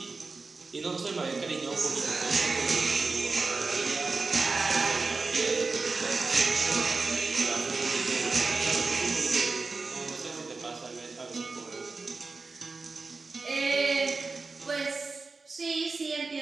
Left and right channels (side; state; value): left; quieter; 4.0 dB